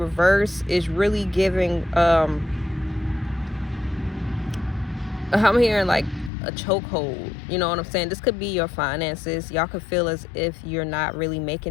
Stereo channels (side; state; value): right; drops out; at 6.3 s